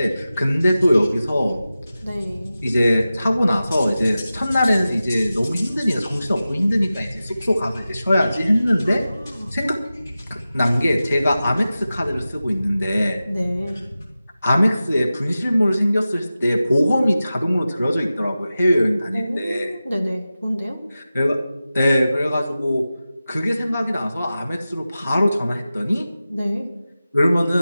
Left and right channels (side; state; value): both; inverted; correlation -0.94